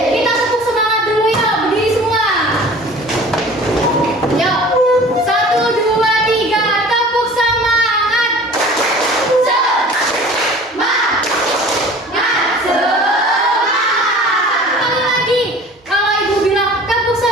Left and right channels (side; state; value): both; normal; correlation 0.44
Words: Kita tepuk semangat dulu ya, berdiri semua. Yuk, 1, 2, 3, tepuk semangat. Semangat. Sekali lagi, kalau ibu bilang tepuk